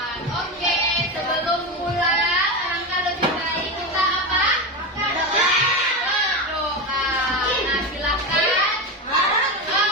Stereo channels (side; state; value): both; normal; correlation 0.18